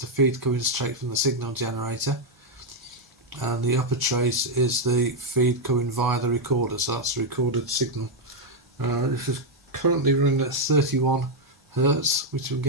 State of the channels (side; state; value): both; normal; correlation 0.01